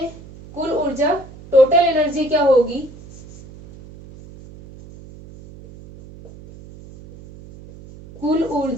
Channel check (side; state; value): right; noise; hum, 19 dB below the sound